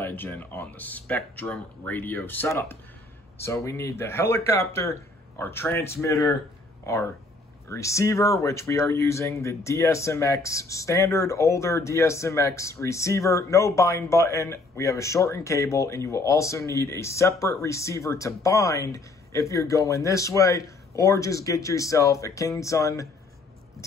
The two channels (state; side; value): quieter; right; 3.1 dB